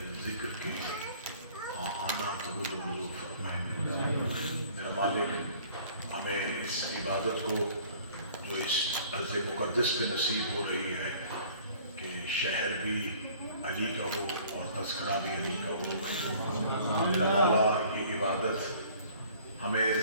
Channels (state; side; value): inverted; both; correlation -0.53